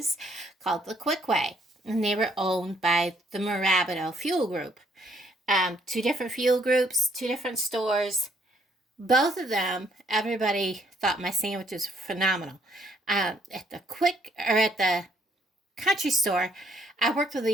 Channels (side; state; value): both; normal; correlation 0.67